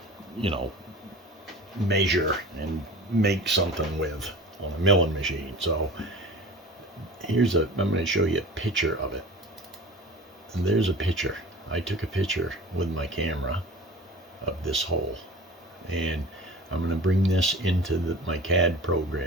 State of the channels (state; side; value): normal; both; correlation 0.38